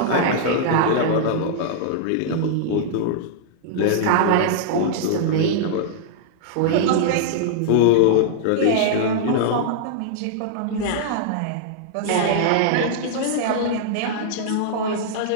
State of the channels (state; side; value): different; both; correlation -0.01